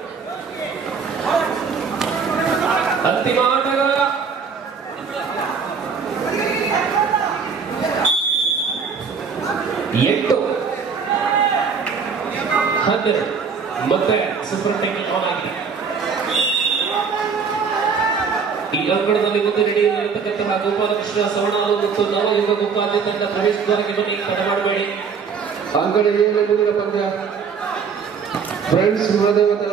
ಅಂತಿಮ ಆಟಗಾರ 12 ಮತ್ತೆ ಸೂಪರ್ ಟೆಕ್ನಿಕ್ ಆನ್ ಆಗಿದೆ. ಈ ಅಂಕಣದಲ್ಲಿ ಮುಂದೆ ನಡೆಯಲಿರತಕ್ಕಂತಹ ಗೋಪಾಲಕೃಷ್ಣ ಸವಣಾಲು ಮತ್ತು ನವಯುಗ ಗೋಪಾಲ್ಯ ತಂಡ ಪ್ರವೇಶ ದ್ವಾರಕ್ಕೆ ಬನ್ನಿ, ತಡ ಮಾಡಬೇಡಿ. ಅಂಕಣ ಏಳನೇ ಮುಂದಿನ ಪಂದ್ಯ ಫ್ರೆಂಡ್ಸ್ ಮಹಾದೇವ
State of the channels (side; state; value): left; quieter; 5.8 dB